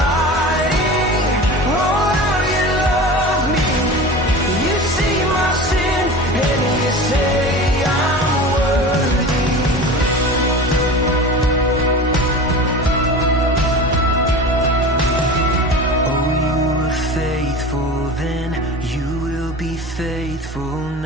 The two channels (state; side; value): normal; both; correlation 0.34